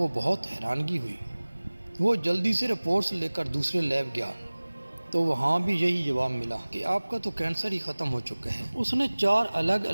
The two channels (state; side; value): inverted; both; correlation -1.00